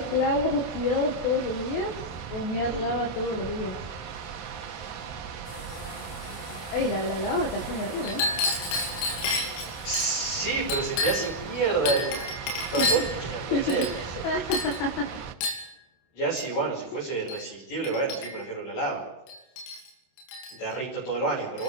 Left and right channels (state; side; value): late; right; 25 ms